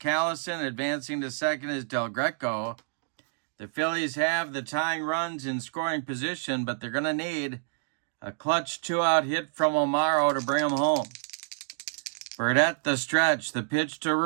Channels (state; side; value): silent; left; digital silence